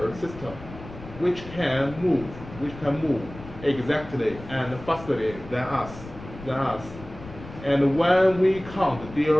system which can move exactly and fastly than us. And when we can't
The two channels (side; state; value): left; noise; rumble, 15 dB below the sound